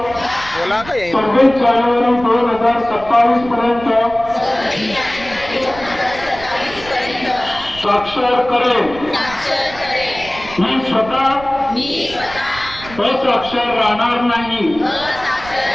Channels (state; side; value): noise; right; rumble, 16 dB below the sound